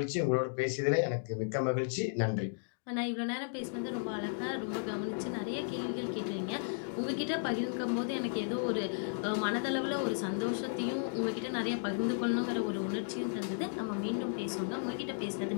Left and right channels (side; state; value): right; silent; digital silence